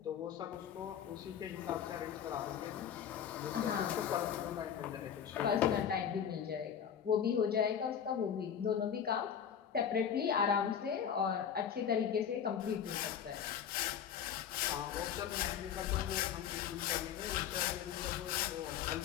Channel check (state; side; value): quieter; right; 8.5 dB